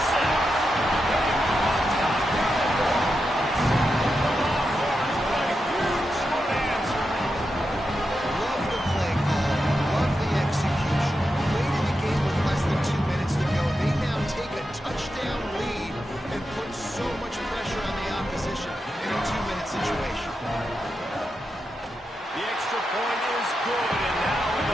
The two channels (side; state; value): both; normal; correlation 0.88